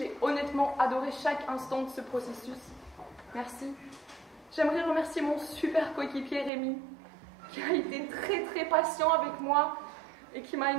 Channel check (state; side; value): drops out; left; at 6.5 s